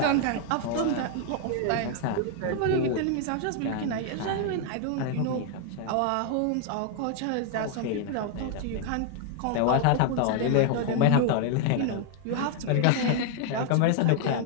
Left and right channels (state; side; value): different; both; correlation 0.00